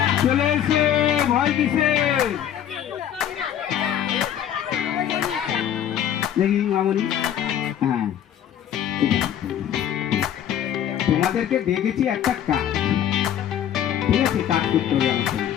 চলে এসে ভয় কিসে দেখি মামনি। হ্যাঁ, তোমাদেরকে দেখেছি একটা কাজ, ঠিক আছে, কাজ করতে হবে আমার সঙ্গে।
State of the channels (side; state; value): right; quieter; 10.1 dB